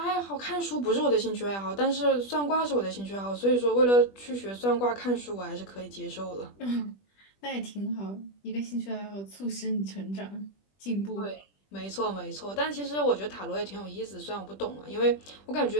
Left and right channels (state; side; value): late; right; 20 ms